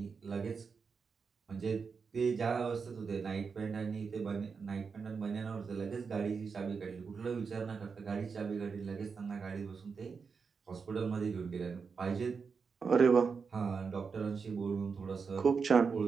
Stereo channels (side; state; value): left; quieter; 5.4 dB